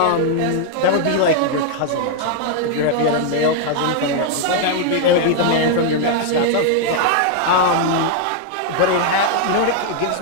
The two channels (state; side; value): different; both; correlation 0.00